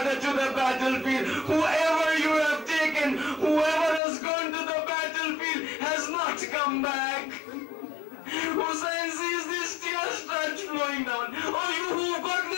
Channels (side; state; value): right; drops out; at 4.0 s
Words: to the battlefield. Whoever you have taken, whoever has gone to the battlefield has not come back. Hussein sees these tears start flowing down. Oh, you who've got